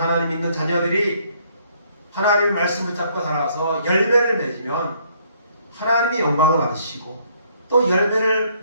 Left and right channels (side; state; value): both; inverted; correlation -0.66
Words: 하나님 믿는 자녀들이 하나님의 말씀을 잡고 살아가서 열매를 맺으면 하나님이 영광을 받으시고 또 열매를